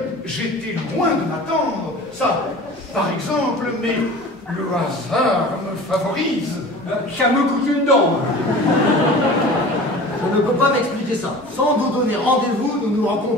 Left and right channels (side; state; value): both; normal; correlation 0.40